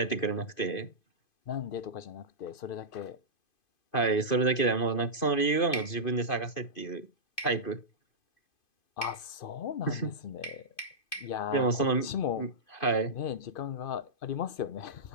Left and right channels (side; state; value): right; late; 2.5 ms